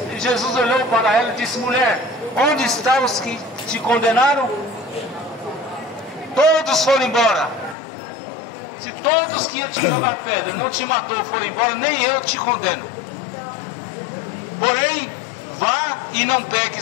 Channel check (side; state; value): right; drops out; at 7.8 s